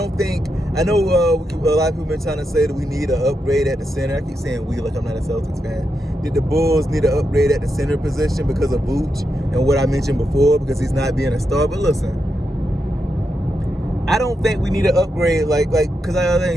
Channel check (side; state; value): both; normal; correlation 0.85